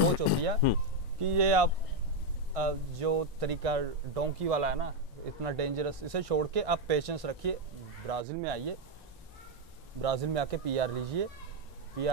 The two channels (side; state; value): both; normal; correlation 0.04